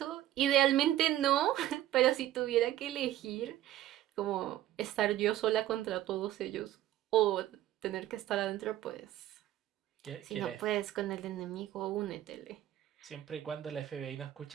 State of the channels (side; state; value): left; quieter; 13.5 dB